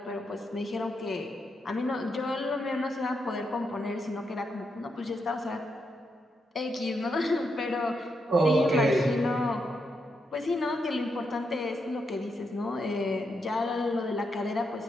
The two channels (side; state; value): both; normal; correlation 0.82